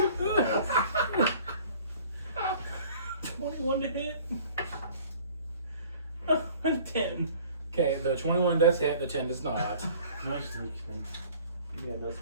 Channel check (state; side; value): inverted; both; correlation -0.50